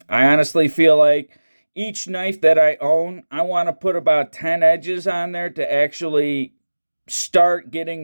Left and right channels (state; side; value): inverted; both; correlation -1.00